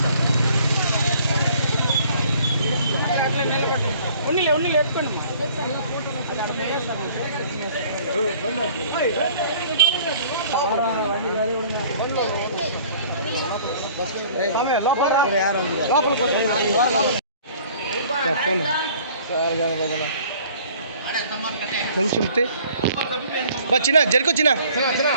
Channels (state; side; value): inverted; both; correlation -0.53